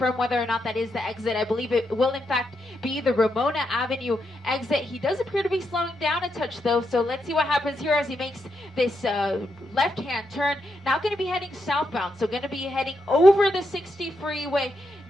whether or not that is the exit. I believe it will, in fact, be the Ramona Avenue exit. He does appear to be slowing down a touch, though, so let's see what happens here as he makes this left-hand turn. Now going to be heading southbound, so going to be heading over the 60 freeway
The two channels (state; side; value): normal; both; correlation 0.82